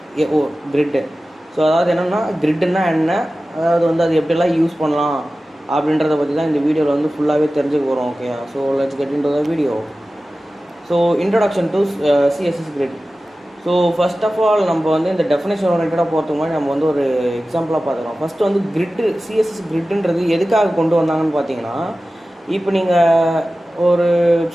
கிரிட்டு. ஸோ அதாவது என்னென்னா கிரிட்டுன்னா என்ன, அதாவது வந்து அது எப்படிலாம் யூஸ் பண்ணலாம் அப்படின்றத பற்றி தான் இந்த வீடியோவில் வந்து ஃபுல்லாகவே தெரிஞ்சுக்க போகிறோம். Okay, so let's get into the video. So introduction to CSS grid. So first of all நம்ம வந்து இந்த டெஃபினேஷன் ஓரியன்டாக போகிறதுக்கு முன்னாடி நம்ம வந்து ஒரு எக்ஸாம்பிளாக பார்த்துக்கலாம். ஃபஸ்ட்டு வந்து கிரிட்டு, சிஎஸ்எஸ் கிரிட்டுன்றது எதுக்காக கொண்டு வந்தாங்கன்னு பார்த்தீங்கன்னா, இப்போ நீங்கள் ஒரு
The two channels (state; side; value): normal; both; correlation 0.95